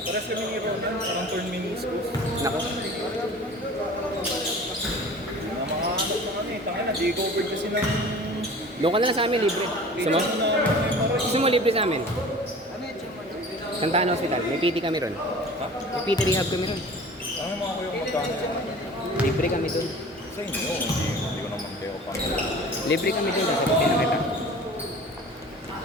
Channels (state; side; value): normal; both; correlation 0.42